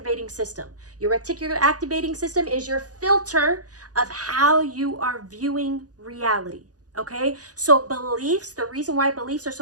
system. Your reticular activating system is your filter of how you are viewing reality. Okay? So beliefs, the reason why beliefs are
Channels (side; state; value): left; late; 0.68 ms